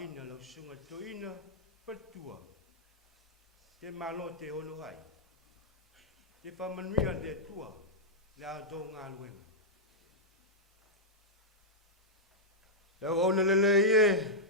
lau sunga Toeaina whatua. Te malo te ono hai. Te whamanuia te tua. Le a tō ngā luenga. Lau ona lele ie.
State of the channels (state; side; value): normal; both; correlation -0.09